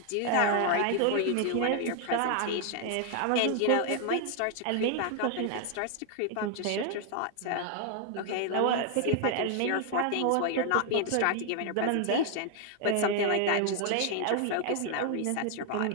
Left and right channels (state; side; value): different; both; correlation 0.00